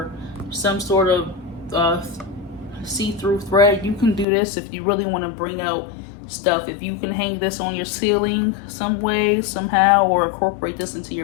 some sort of see-through thread, you can do this if you really want to bring out stuff. If you can hang this on your ceiling some way, somehow, or incorporate this into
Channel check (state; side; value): drops out; right; at 4.2 s